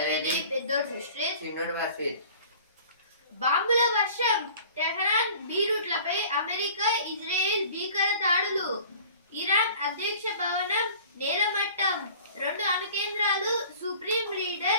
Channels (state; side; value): inverted; both; correlation -0.47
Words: పెద్దోడు సృష్టి, చిన్నోడు వర్షిత్. బాంబుల వర్షం, టెహరాన్ బీరూట్లపై అమెరికా ఇజ్రాయెల్ భీకర దాడులు, ఇరాన్ అధ్యక్ష భవనం నేలమట్టం, 2 అణు కేంద్రాలు, సుప్రీం